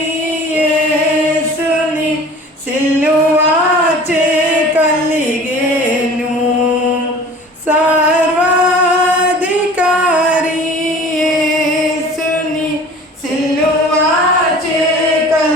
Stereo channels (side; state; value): both; normal; correlation 0.44